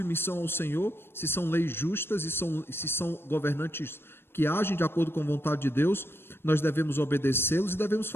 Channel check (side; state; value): right; late; 0.11 ms